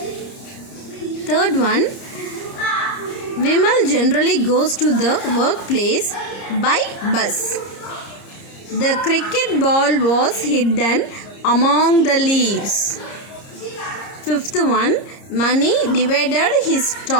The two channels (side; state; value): right; late; 30 ms